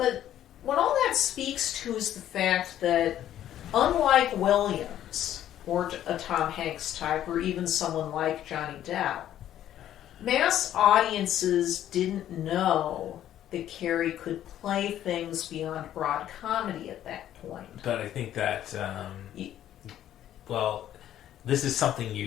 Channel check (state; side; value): quieter; right; 11.7 dB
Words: what all that speaks to is the fact that, unlike Williams, or a Tom Hanks type, or even someone like Johnny Depp, mass audiences didn't know that Carrey could play things beyond broad comedy at that point. But I think that, this is something